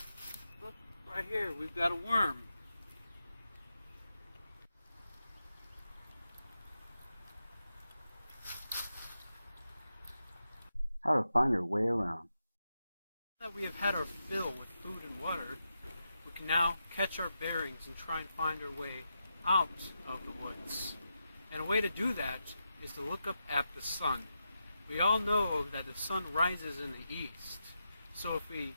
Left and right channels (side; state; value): both; inverted; correlation -0.87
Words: Look, right here, we've got a worm. How to find your way around. Now that we have had our fill with food and water, we can now catch our bearings and try and find our way out of the woods. And a way to do that is to look up at the sun. We all know that the sun rises in the east. So if we